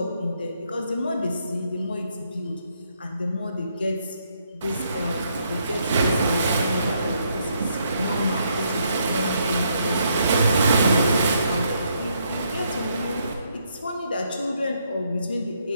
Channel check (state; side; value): inverted; both; correlation -0.75